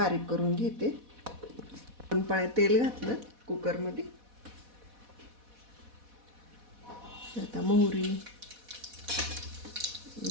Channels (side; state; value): left; late; 4.1 ms